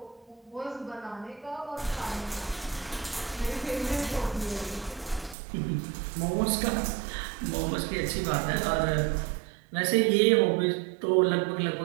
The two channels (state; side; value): drops out; left; at 5.4 s